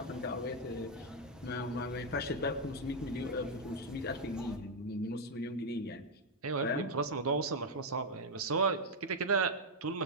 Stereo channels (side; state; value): both; normal; correlation 0.00